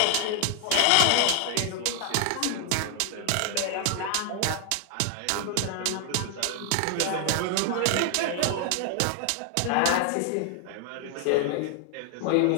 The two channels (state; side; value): different; both; correlation 0.00